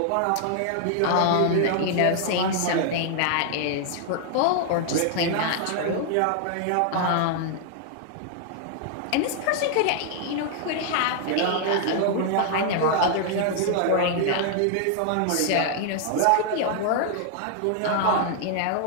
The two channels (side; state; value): both; different; correlation 0.00